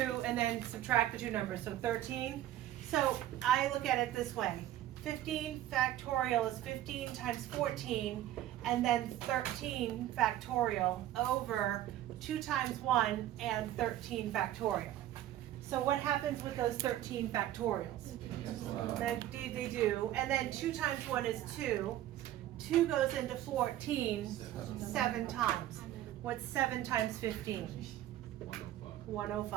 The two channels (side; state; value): left; quieter; 13.1 dB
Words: and then subtract the 2 numbers, so 13. So I look at it this way. 15 factorial is 15 times 14, and then 13 factorial over 2 times 1 and 13 factorial. So what happens with those 13 factorials? They do. And then 2 times 1 is 2. 2 goes into 14 7 times. What's 7 times 15?